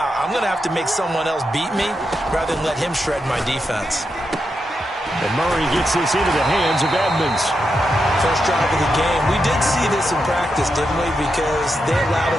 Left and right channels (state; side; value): normal; both; correlation 0.85